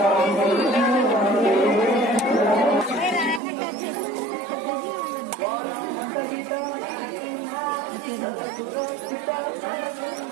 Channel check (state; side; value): drops out; left; at 3.4 s